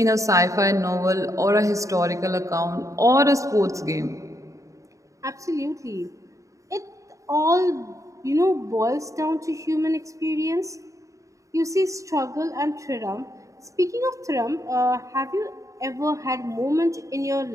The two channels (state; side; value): late; left; 0.16 ms